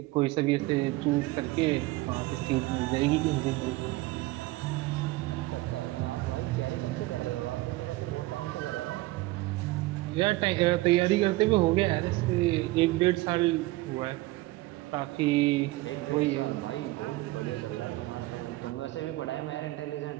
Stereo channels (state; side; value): quieter; left; 19.4 dB